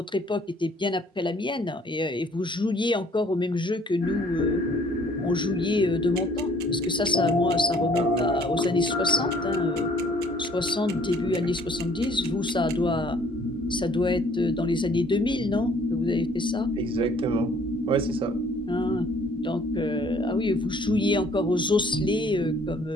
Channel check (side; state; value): both; normal; correlation 0.59